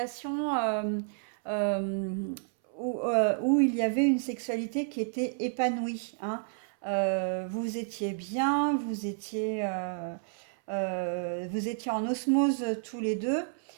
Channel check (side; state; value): left; silent; 57 dB below the other